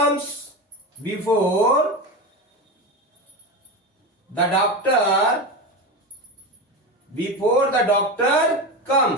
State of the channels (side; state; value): both; normal; correlation 0.21